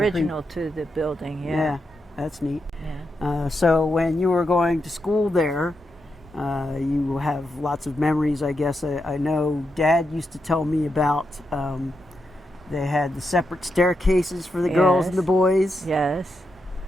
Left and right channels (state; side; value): normal; both; correlation 0.85